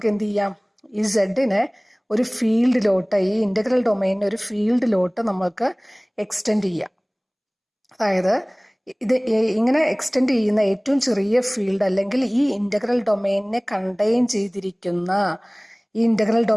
എന്ത് ചെയ്യാം? ഈ സെഡിനെ ഒരു ഫീൽഡിലോട്ട്, ഈ ഇൻ്റഗ്രൽ ഡൊമെയിനെ ഒരു ഫീൽഡിലോട്ട് നമുക്ക് എക്സ്റ്റെൻഡ് ചെയ്യാം. അതായത് ഇത് ഇങ്ങനെ എക്സ്റ്റെൻഡ് ചെയ്യുന്ന ഏറ്റവും ചെറിയ ഫീൽഡ് അല്ലെങ്കിൽ ഈ ഇൻ്റഗ്രൽ ഡൊമെയിനെ കണ്ടെയ്ൻ ചെയ്തിരിക്കുന്ന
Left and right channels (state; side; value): identical; both; correlation 1.00